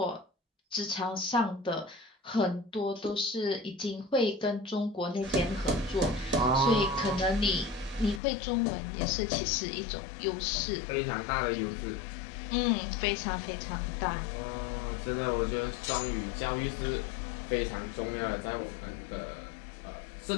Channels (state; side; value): drops out; right; at 8.2 s